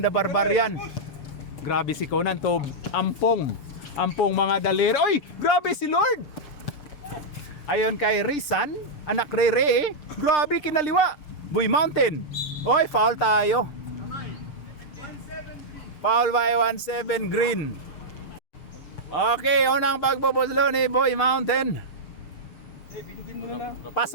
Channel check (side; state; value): right; late; 6.6 ms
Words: Barbarian. Grabe si Conan to. Ampong mga daliri. Oy! Grabe si Lord! Ayon kay Rizan, anak ni Ray. Grabe kinaliwa. Boy Mountain. Oy, foul tayo. Foul by 1-7 green. Okay, unang pagbubuslo ni Boy Mountain. Bidugin mo na lang.